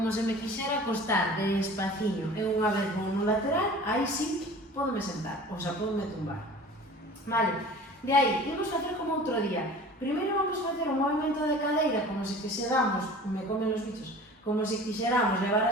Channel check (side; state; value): both; normal; correlation 0.42